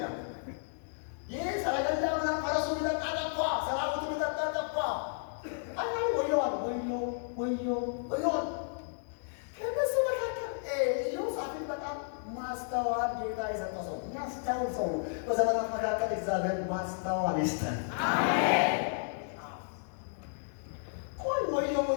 ያ ይህ ሰረገላ ምናምን ፈረሱ ሊጠጣ ጠፋ፣ ሰራዊቱ ሊጠጣ ጠፋ። አናል ወየዋል ወየዋል። ከነሱ መካከል ኢዮሳፍጥ በጣም ማስተዋል ጌታ የሰጠ ሰው የሚያስተውል ሰው ነው። በዘመናት መካከል እግዚአብሔር ማስተዋል ይስጠን። አሜን። ቆይ ወየው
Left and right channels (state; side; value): silent; right; digital silence